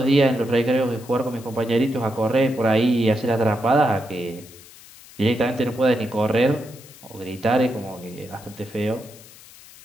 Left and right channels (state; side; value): noise; left; hiss, 21 dB below the sound